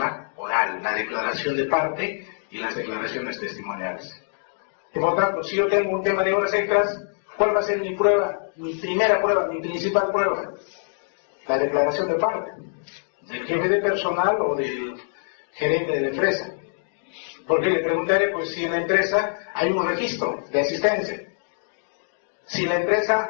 oral, la declaración de parte y las declaraciones testimoniales. Y por tanto, si yo tengo un tema de horas extras, ¿cuál va a ser mi prueba? Mi primera prueba, mi principal prueba. La declaración de parte. Del jefe de personal o del gerente de la empresa. Porque le preguntaré, pues, si en la empresa hay un registro de asistencia. Si la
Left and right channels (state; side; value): silent; right; digital silence